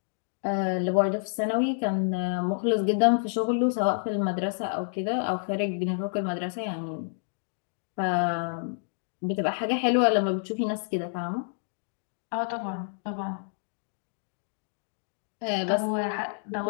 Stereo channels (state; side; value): silent; right; digital silence